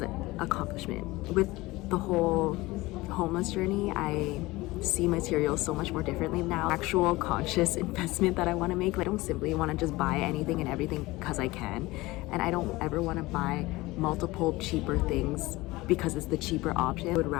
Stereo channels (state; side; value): quieter; right; 20.3 dB